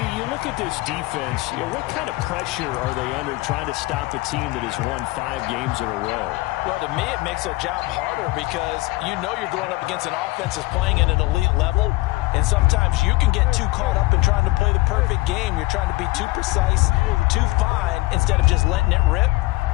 you look at this defense, what kind of pressure are they under trying to stop a team that has won 5 games in a row? Well, to me, it makes their job harder because you know you're going up against an offense that's playing at an elite level, and sometimes you can get too caught up in trying to play the perfect game. You're trying to be too precise, too fine, instead of just letting it rip.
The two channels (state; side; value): quieter; right; 20.6 dB